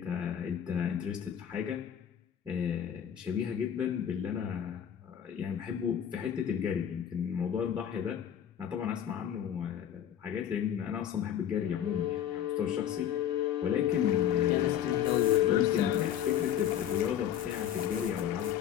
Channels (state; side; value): quieter; right; 9.8 dB